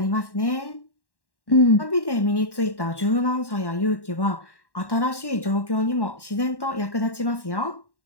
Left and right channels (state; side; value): late; right; 1.1 ms